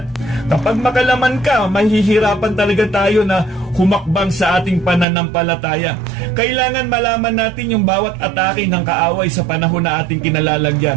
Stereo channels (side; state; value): left; drops out; at 5.1 s